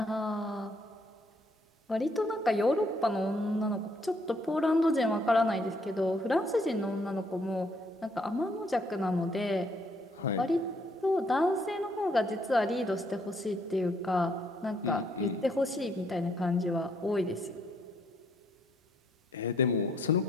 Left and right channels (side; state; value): both; normal; correlation 0.69